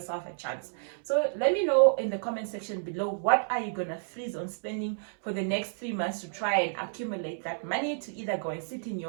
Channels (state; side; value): silent; left; 58 dB below the other